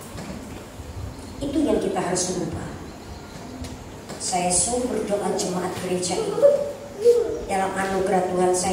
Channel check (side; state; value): both; identical; correlation 1.00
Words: Itu yang kita harus rubah. Saya sungguh berdoa jemaat gereja ini, dalam anugerah Tuhan